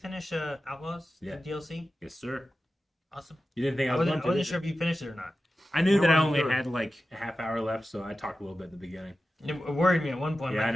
Outlaws? Yeah. The DLC? Yes, sir. Awesome. You didn't think I I was wasn't, going to? sure if you finished it or not. I knew I that I wasn't only sure. had like a half hour left, so I talked a little bit at the beginning. It worried me at one point. Yeah, I like,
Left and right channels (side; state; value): both; normal; correlation 0.93